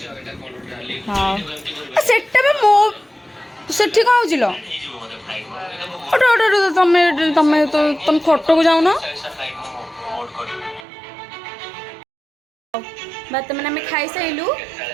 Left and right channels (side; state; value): left; drops out; at 10.9 s